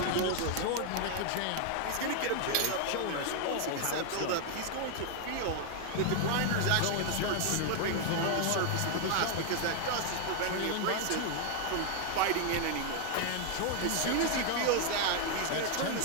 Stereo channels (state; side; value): different; both; correlation 0.00